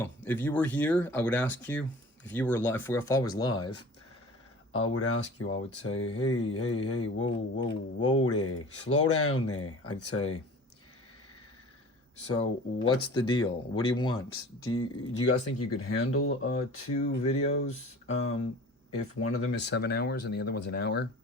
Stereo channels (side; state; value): both; normal; correlation 0.42